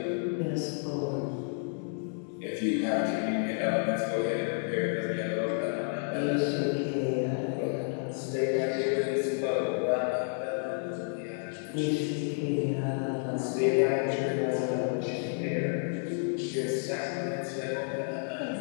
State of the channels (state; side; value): silent; right; 57 dB below the other